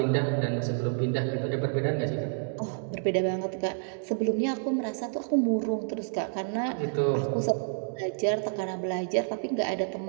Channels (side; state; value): left; silent; digital silence